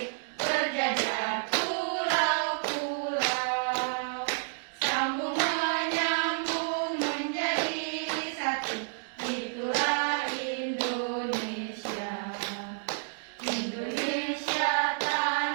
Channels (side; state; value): left; silent; digital silence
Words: berjajar pulau-pulau, sambung menyambung menjadi satu, itulah Indonesia. Indonesia